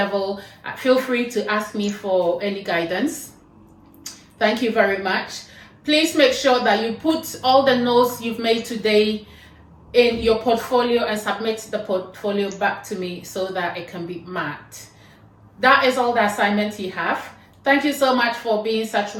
feel free to ask me for any guidance. Thank you very much. Please make sure that you put all the notes you've made today in your portfolio and submit the portfolio back to me so that it can be marked. That is all the assignments you have. Thank you so much for being such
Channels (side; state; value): both; identical; correlation 1.00